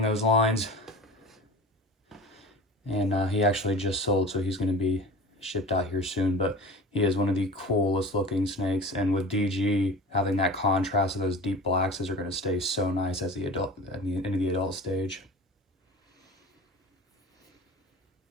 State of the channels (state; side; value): normal; both; correlation 0.36